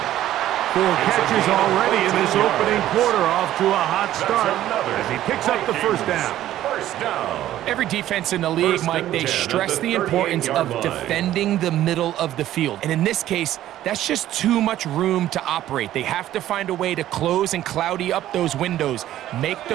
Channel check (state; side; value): quieter; left; 13.2 dB